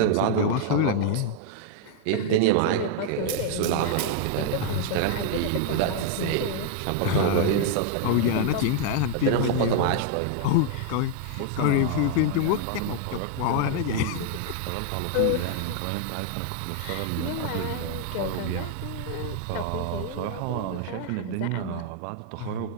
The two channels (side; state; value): both; different; correlation 0.00